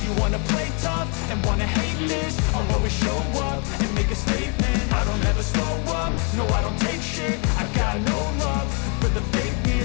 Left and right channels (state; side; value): quieter; right; 36.3 dB